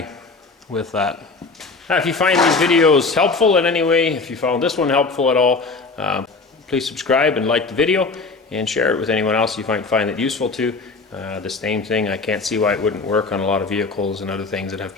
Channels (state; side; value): quieter; right; 4.1 dB